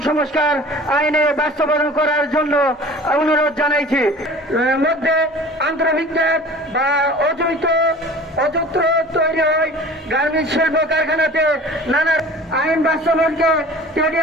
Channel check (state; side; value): normal; both; correlation 0.43